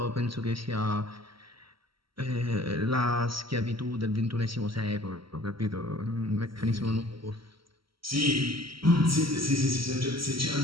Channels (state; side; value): late; left; 0.74 ms